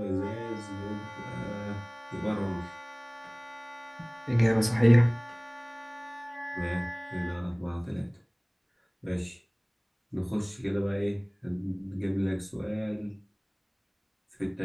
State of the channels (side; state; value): both; identical; correlation 1.00